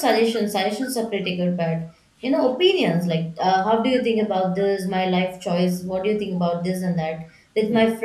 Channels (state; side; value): identical; both; correlation 1.00